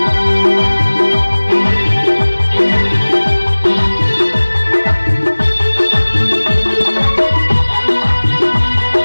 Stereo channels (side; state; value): both; inverted; correlation -1.00